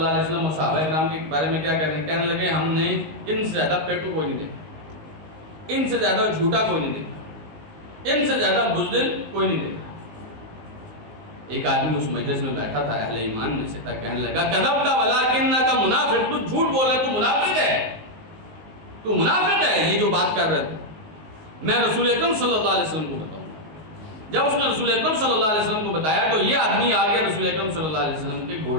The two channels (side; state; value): left; late; 19 ms